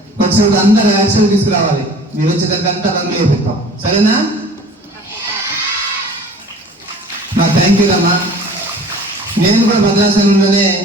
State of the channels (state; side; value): normal; both; correlation 0.46